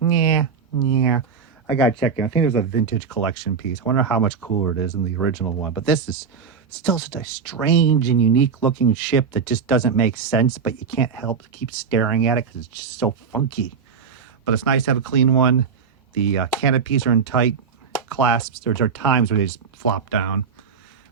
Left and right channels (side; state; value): left; quieter; 6.0 dB